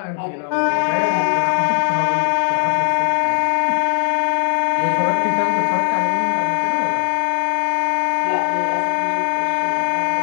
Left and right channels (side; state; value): right; silent; digital silence